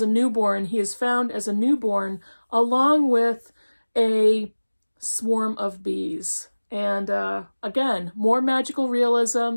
a newborn, he is found as a newborn along with a swarm of bees. And again, more magical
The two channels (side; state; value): both; inverted; correlation -1.00